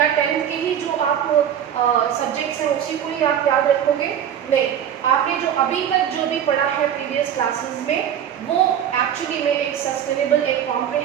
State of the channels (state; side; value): quieter; left; 9.4 dB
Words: 10th के ही जो आप सब्जेक्ट्स हैं उसी को ही आप याद रखोगे? नहीं, आपने जो अभी तक जो भी पढ़ा है प्रीवियस क्लासेस में वो एक्चुअली में एक सस्टेनेबल, एक